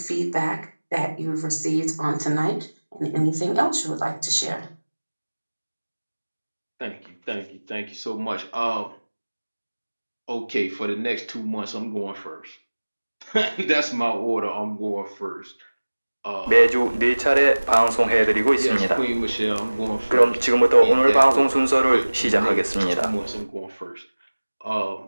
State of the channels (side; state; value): both; inverted; correlation -1.00